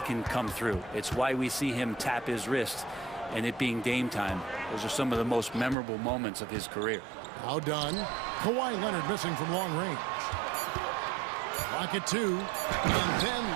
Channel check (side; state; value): left; drops out; at 5.8 s